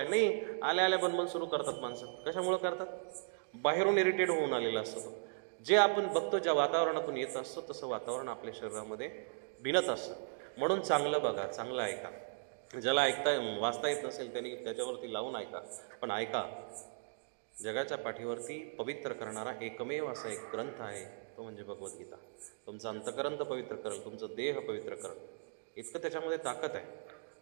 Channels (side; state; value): left; silent; digital silence